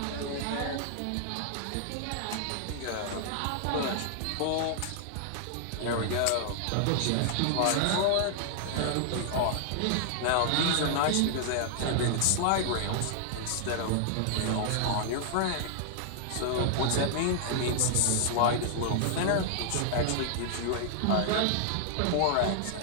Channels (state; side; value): different; both; correlation -0.01